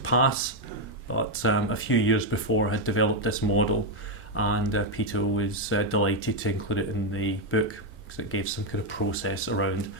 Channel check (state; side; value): normal; both; correlation 0.02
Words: But a few years before I had developed this model, and Peter was delighted to include it in the book because it gave some kind of process around